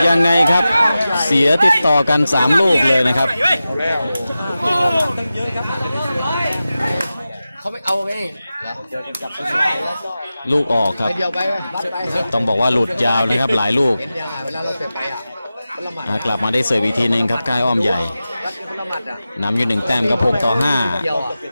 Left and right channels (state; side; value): inverted; both; correlation -0.94